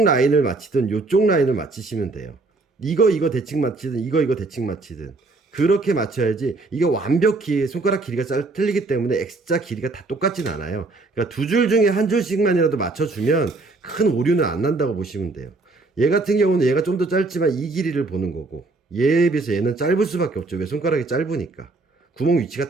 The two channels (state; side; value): quieter; left; 3.4 dB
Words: 라인을 맞히든 요쪽 라인을 맞추시면 돼요. 이거 대칭 맞히든 이거 대칭 맞히든 그렇게 맞춰야지. 이게 완벽히 손가락 길이가 틀리기 때문에 X자 길이가 다 똑같진 않아요. 그러니까 두 줄 중에 한 줄씩만이라도 맞춰주면 큰 오류는 안 난다고 보시면 돼요. 얘 같은 경우는 얘가 좀 더 짧지만 이 길이를 보는 거고, 얘에 비해서 얘는 짧을 수밖에 없죠. 왜? 손가락이 짧으니까. 구멍 위치가